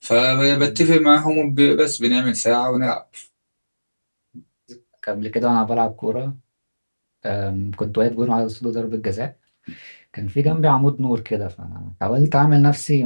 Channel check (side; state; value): both; inverted; correlation -1.00